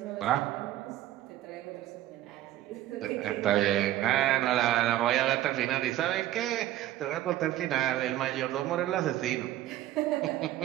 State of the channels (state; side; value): quieter; left; 13.8 dB